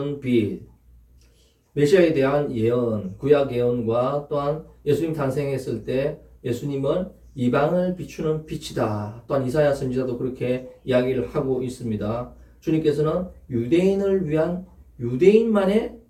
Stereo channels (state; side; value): identical; both; correlation 1.00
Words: 빛, 메시아에 대한 예언, 구약 예언과 또한 예수님 탄생했을 때 예수님은 이방을 비추는 빛이다. 또한 이사야 선지자도 그렇게 이야기를 하고 있습니다. 주님께서는 유대인을 위한 유대인만의